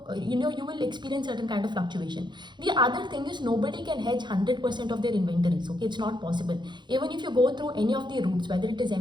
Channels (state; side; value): late; left; 0.22 ms